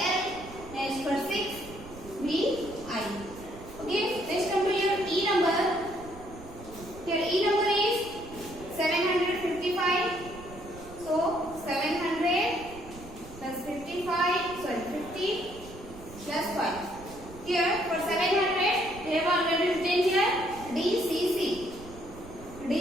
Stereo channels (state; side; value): noise; right; rumble, 16 dB below the sound